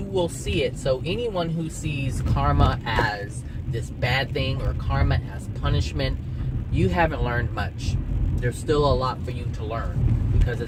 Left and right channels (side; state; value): both; identical; correlation 1.00